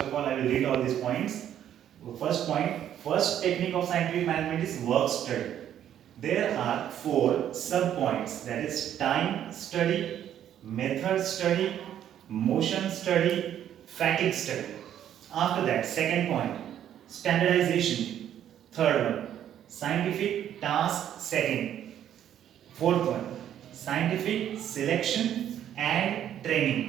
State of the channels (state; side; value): quieter; left; 10.5 dB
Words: all, I will read all these points. First point, first technique of scientific management is work study. There are four sub points, that is time study, method study, motion study, fatigue study. After that, second point, standardization. Third one, scientific task setting. Fourth one, scientific selection and